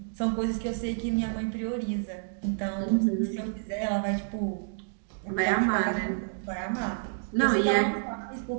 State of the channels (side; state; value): left; silent; digital silence